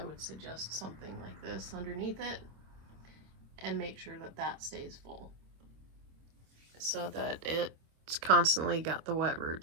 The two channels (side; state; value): left; late; 26 ms